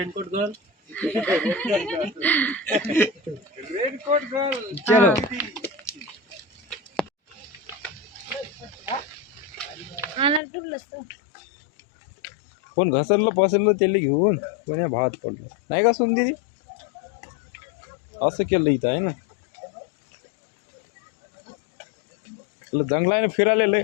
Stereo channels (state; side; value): drops out; right; at 10.4 s